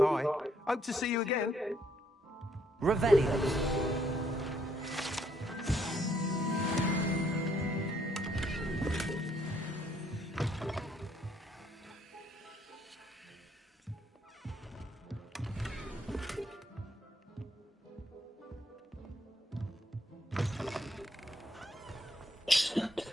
Hope to see you again. Revelio.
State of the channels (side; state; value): both; normal; correlation 0.70